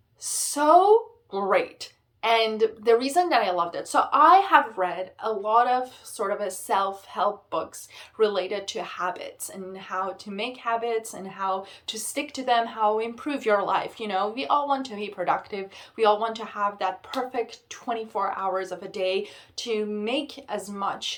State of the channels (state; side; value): identical; both; correlation 1.00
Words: so great. And the reason that I loved it, so I have read a lot of sort of a self-help books related to habits and how to make habits and how to stick to them, how to improve your life. You know, we all want to be productive. We all want to have that perfect 24 hours of a day to make as much